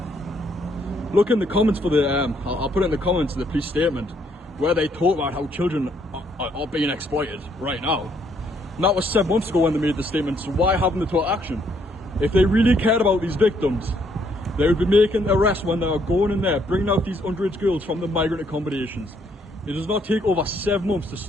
Look in the comments for the, I'll put it in the comments of the police statement, where they talk about how children are being exploited right now. And that was 7 months ago when they made the statement, so why haven't they took action? If they really cared about these victims, they would be making arrests when they are going in there, bringing out these underage girls from the migrant accommodations. It does not take over 7 months to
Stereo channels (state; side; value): normal; both; correlation 0.70